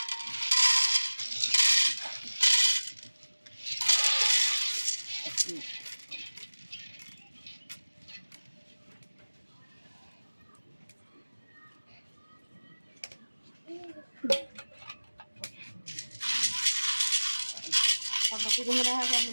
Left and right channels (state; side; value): inverted; both; correlation -1.00